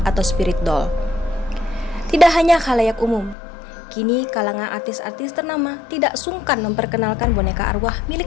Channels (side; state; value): right; drops out; at 3.4 s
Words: atau spirit doll. Tidak hanya khalayak umum, kini kalangan artis-artis ternama tidak sungkan memperkenalkan boneka arwah